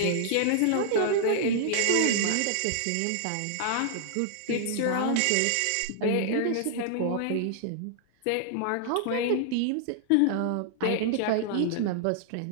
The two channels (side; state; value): both; different; correlation -0.01